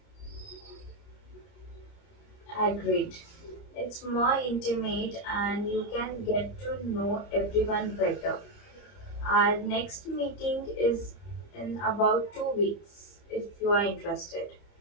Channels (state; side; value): late; right; 30 ms